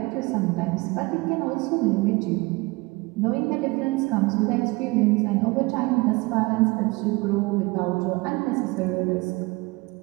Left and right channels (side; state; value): left; quieter; 24.3 dB